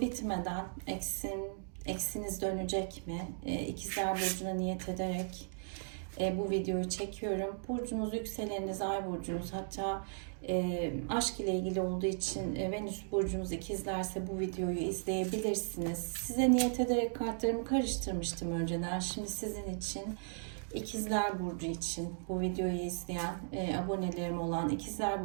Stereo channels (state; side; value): silent; left; digital silence